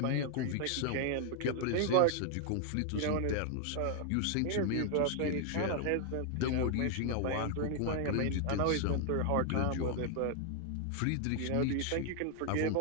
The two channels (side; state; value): both; different; correlation 0.00